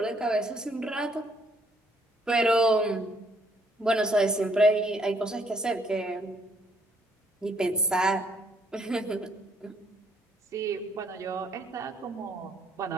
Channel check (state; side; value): normal; both; correlation 0.68